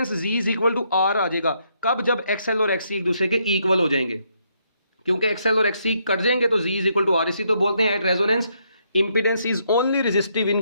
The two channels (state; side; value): inverted; both; correlation -0.74